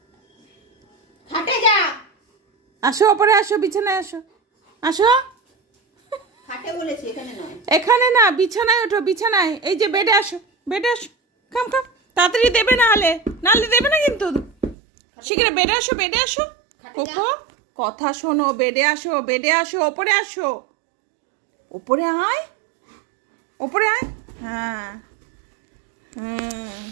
খাটে যা। আসো, ওপরে আসো, বিছানায় আসো, আসো। খাটে বলেছি, এখানে নয়। এখানে না, বিছানায় ওঠো, বিছানায়। এই যে বেডে আসো, বেডে আসো। খাম খাম, তাড়াতাড়ি দেবে, নাহলে দেবে না কিন্তু। শিগগির বেডে আসো, বেডে আসো। কোকো, কথা শোনো, বেডে আসো, বেডে আসো, ওপরে আসো। ওপরে আয়, ওপরে আয়। হ্যাঁ হ্যাঁ,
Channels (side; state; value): left; drops out; at 14.8 s